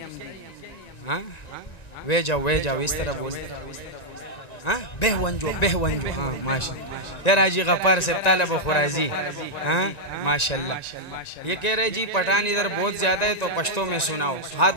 हाँ, वे जाओ इस तरह बोलते। हाँ, बेहवंजो। हाँ, माशाल्लाह। यार हाजी गफ्फार से तालब खुराजी। हाँ, माशाल्लाह। ये कह रहे जी पठान इधर बहुत ज्यादा है, तो पश्तो में सुनाओ।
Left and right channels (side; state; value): right; late; 1.9 ms